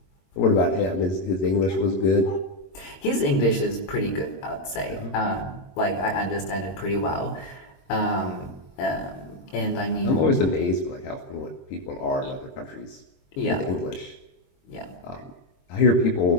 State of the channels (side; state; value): right; late; 21 ms